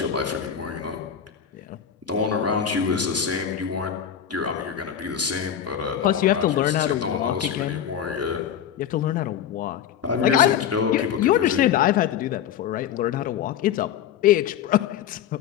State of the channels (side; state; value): right; quieter; 9.2 dB